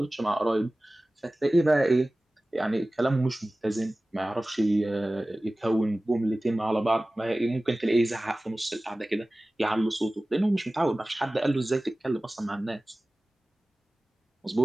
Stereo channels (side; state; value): both; normal; correlation 0.97